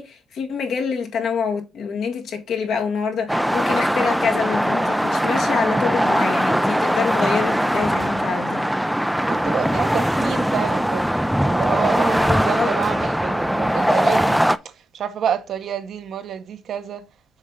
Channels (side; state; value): both; normal; correlation 0.90